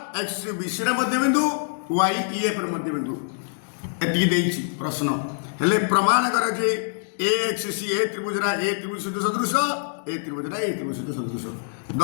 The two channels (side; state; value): right; silent; digital silence